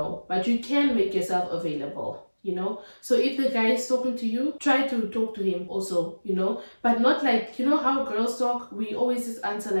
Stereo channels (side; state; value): both; inverted; correlation -1.00